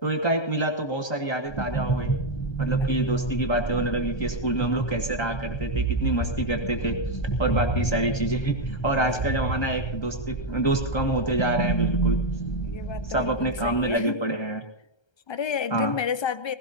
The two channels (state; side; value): late; right; 1.3 ms